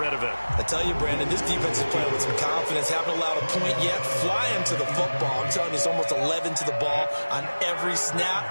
of it. I tell you, Brandon, this defense is playing with some confidence. Haven't allowed a point yet. Flying to the football. I'm telling you, it's almost 11 to the ball on every snap.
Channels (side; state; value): both; inverted; correlation -1.00